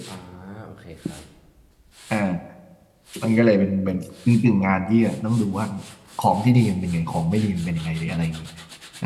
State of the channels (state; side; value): identical; both; correlation 1.00